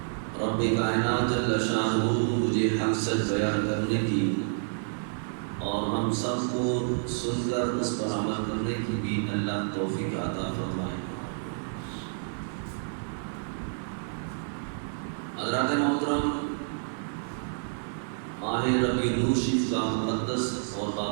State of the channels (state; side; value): silent; left; digital silence